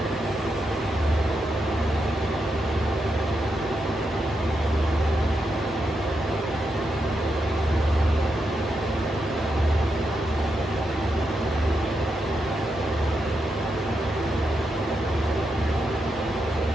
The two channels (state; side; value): normal; both; correlation 0.84